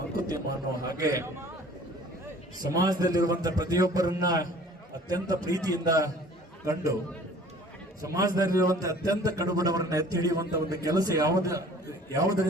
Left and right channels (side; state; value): both; normal; correlation 0.50